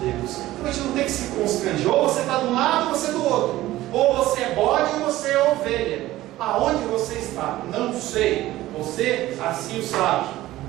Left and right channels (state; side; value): quieter; left; 16.0 dB